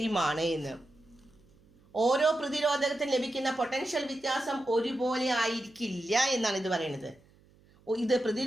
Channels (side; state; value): right; noise; hum, 30 dB below the sound